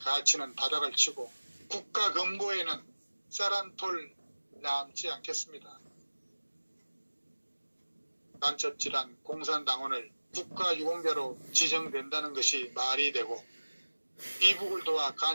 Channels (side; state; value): both; inverted; correlation -1.00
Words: 바닥을 치고 국가 금고에는 쌀 한 톨 남지 않겠습니다. 간첩질한 공산당원을 국가 유공자로 지정된다는 것이 말이 되고 이북을 도와